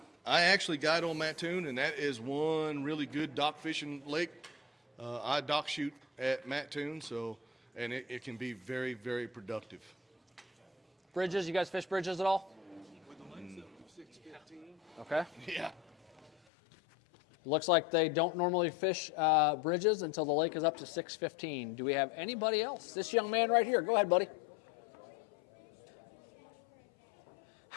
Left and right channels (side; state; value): right; drops out; at 16.3 s